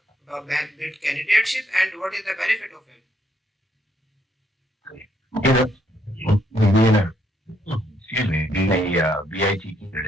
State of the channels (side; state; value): both; normal; correlation 0.72